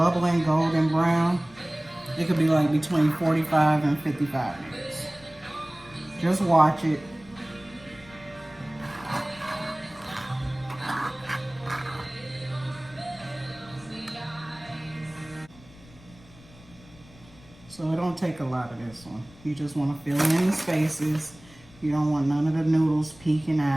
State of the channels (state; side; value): noise; left; rumble, 23 dB below the sound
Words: golden brown. It could be like between 45 and 55 minutes. Just watch it. So it don't take a lot of this one. You just want to fill in the spaces. You don't want none of the noodles peeking